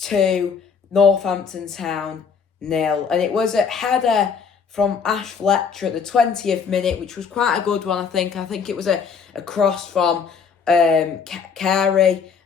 2, Northampton Town 0. And it was a header from Ash Fletcher at the 20th minute, which was quite a good one, I think. I think it was a cross from Carey,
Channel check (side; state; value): right; quieter; 6.1 dB